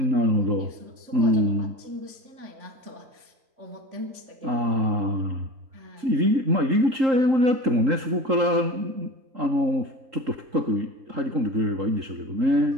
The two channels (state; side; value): late; left; 3.8 ms